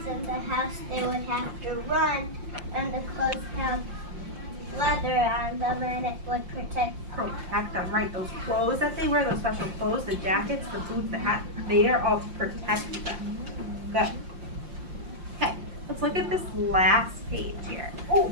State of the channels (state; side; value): late; left; 5.7 ms